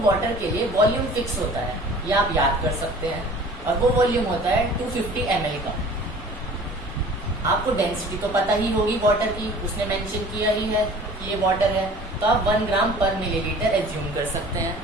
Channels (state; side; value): normal; both; correlation 0.46